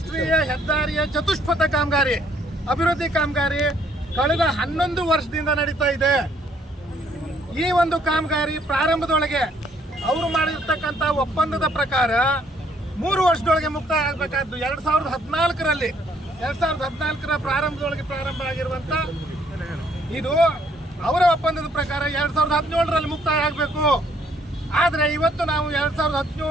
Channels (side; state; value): both; normal; correlation 0.66